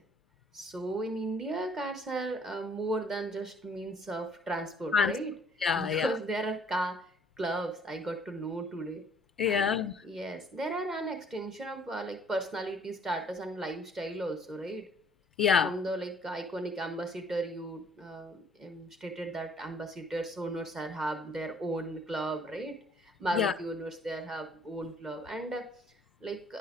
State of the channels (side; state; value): both; normal; correlation 0.59